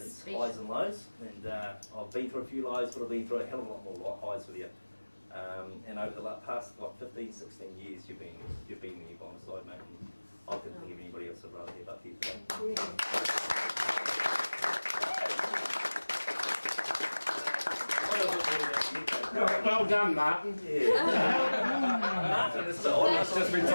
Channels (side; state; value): both; inverted; correlation -1.00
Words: its highs and lows, and I've been through a few lows, but I've been through a hell of a lot more highs with you. And over the past 15, 16 years, you've been there by my side, mate. And I couldn't think of anybody else I'd rather have up here today. Well done, Martin. Martin, it's almost just been